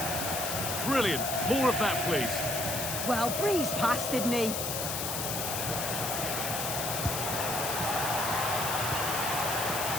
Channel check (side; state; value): left; noise; hiss, 2 dB below the sound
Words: Brilliant. More of that, please. Well, breezed past, didn't he?